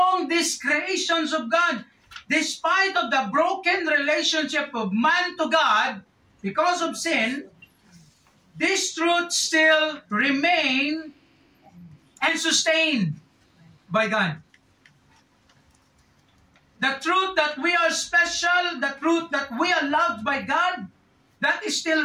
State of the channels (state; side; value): identical; both; correlation 1.00